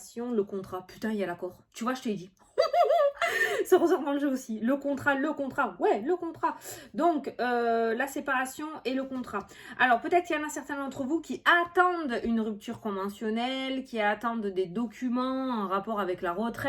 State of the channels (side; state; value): both; identical; correlation 1.00